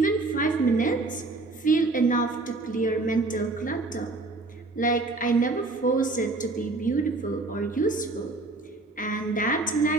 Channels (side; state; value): left; quieter; 3.2 dB